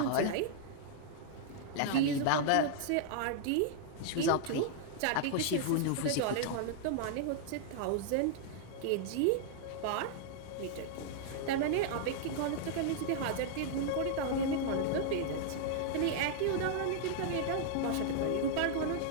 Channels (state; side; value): different; both; correlation -0.01